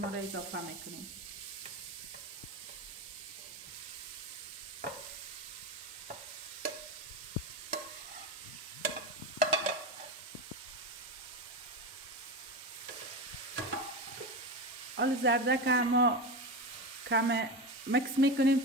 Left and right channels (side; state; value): both; normal; correlation 0.21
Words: را اضافه میکنیم. حالا زردک ما کم مکس میکنیم